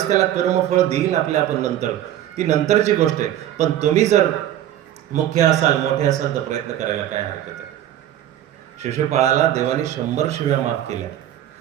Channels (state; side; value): quieter; left; 12.0 dB